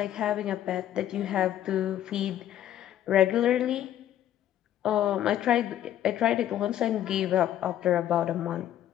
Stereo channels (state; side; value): quieter; right; 11.7 dB